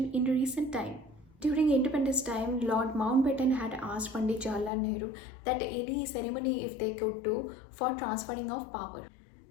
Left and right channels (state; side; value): drops out; right; at 4.7 s